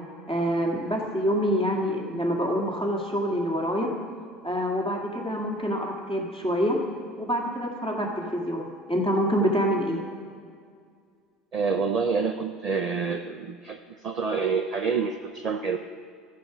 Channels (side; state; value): both; normal; correlation 0.49